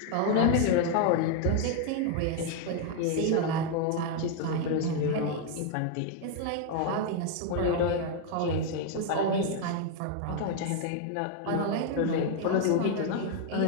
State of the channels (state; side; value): different; both; correlation 0.00